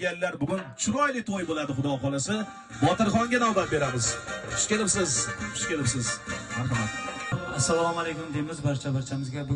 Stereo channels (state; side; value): identical; both; correlation 1.00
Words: Bugun chiroyli to'y bo'ladi, xudo xolasa. Botirxonga navbat beramiz. Xush kelibsiz. Marhamat. Assalomu alaykum deymiz barchamizga.